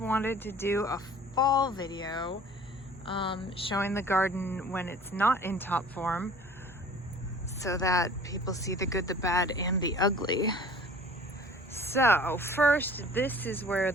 to do a fall video showing the garden when it's not in top form so that people see the good, the bad, and the ugly. So first, this is where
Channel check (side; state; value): both; normal; correlation 0.47